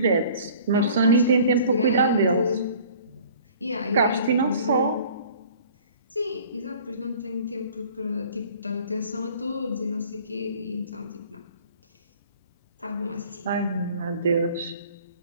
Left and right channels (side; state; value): both; inverted; correlation -0.50